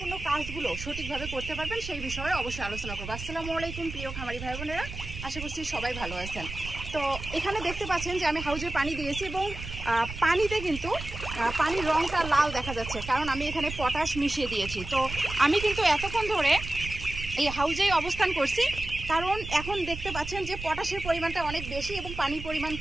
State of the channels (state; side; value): noise; right; rumble, 9 dB below the sound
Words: কাজগুলো সঠিকভাবে করতে পারবেন সেই বিষয়ে অবশ্যই আলোচনা করবো। আসসালামু আলাইকুম প্রিয় খামারি ভাই বোনেরা, আশা করছি সবাই ভালো আছেন। তো এখানে দেখতে পাচ্ছেন যে আমি হাউজে পানি দিয়েছি এবং পানিতে কিন্তু পানির রঙটা লাল দেখা যাচ্ছে, কারণ আমি এখানে পটাশ মিশিয়ে দিয়েছি। তো আমি কিন্তু এতক্ষণ ধরে এই হাউজেই অবস্থান করছি, কারণ এখন দেখতে পাচ্ছেন যে পটাশের পরিমাণটা অনেক বেশি এবং পানির পরিমাণ